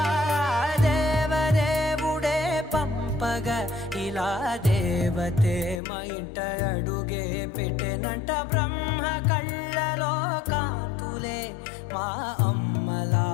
దేవదేవుడే పంపగా ఇలా దేవతే మా ఇంట అడుగే పెట్టెనంట బ్రహ్మ కళ్ళలో కాంతులే మా అమ్మలా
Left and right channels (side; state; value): right; drops out; at 5.8 s